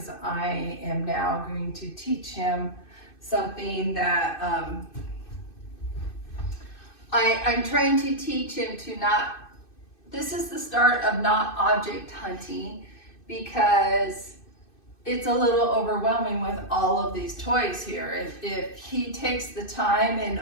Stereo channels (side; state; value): right; late; 2.6 ms